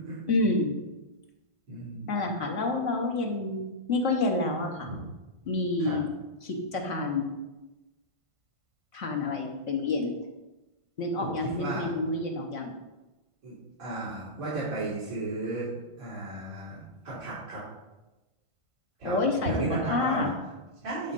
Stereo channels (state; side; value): late; left; 1.5 ms